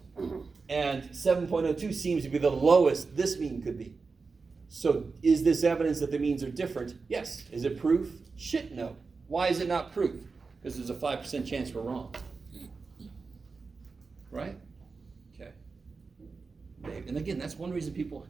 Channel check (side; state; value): left; quieter; 4.4 dB